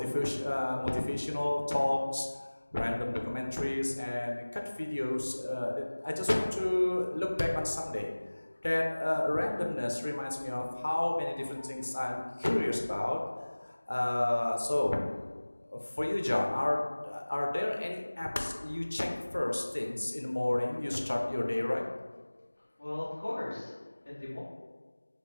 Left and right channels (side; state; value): both; inverted; correlation -1.00